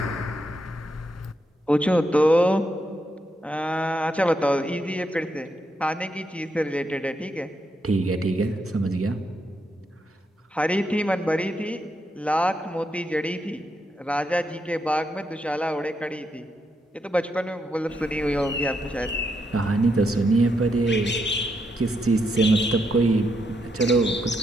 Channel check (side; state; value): both; normal; correlation 0.80